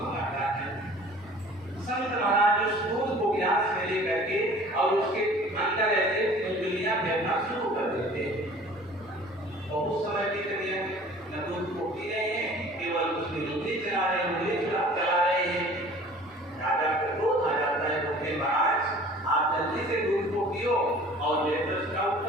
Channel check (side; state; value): both; normal; correlation 0.48